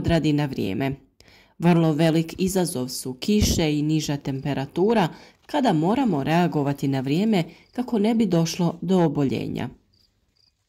na vrijeme. Vrlo velik izazov su kiše i niža temperatura kada moramo reagovati na vrijeme kako ne bi došlo do oboljenja.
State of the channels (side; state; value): both; identical; correlation 1.00